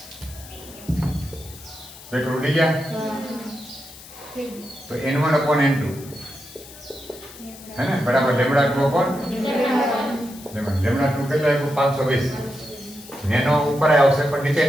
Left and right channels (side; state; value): left; noise; hiss, 18 dB below the sound